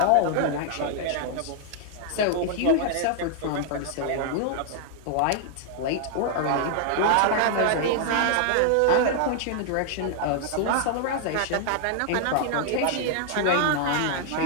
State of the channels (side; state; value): both; different; correlation -0.01